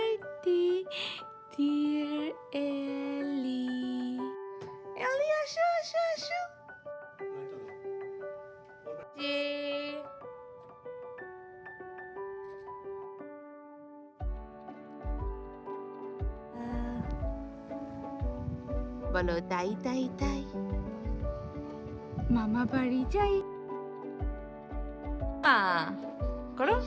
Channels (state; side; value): identical; both; correlation 1.00